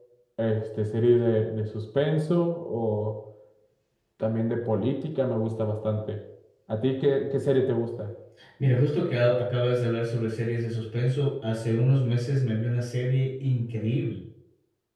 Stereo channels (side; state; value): both; identical; correlation 1.00